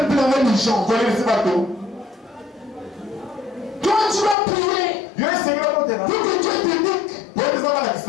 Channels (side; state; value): right; drops out; at 4.4 s